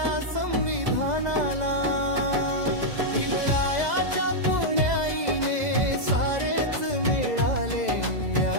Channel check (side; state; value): left; late; 2.0 ms